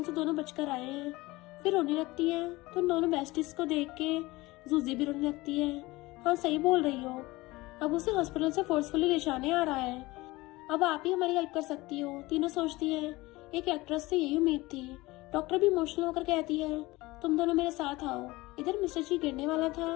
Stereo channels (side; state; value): right; quieter; 20.6 dB